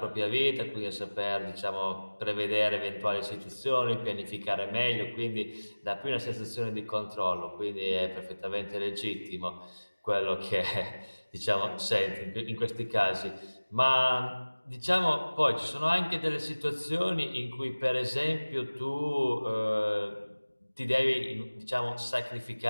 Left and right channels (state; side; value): inverted; both; correlation -1.00